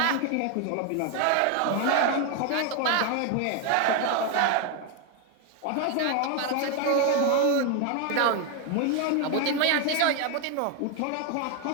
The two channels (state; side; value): different; both; correlation 0.01